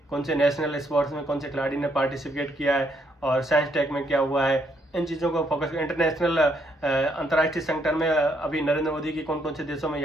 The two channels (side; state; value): both; normal; correlation 0.73